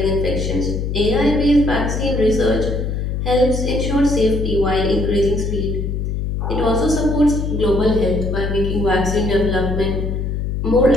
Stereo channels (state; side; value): noise; left; hum, 2 dB below the sound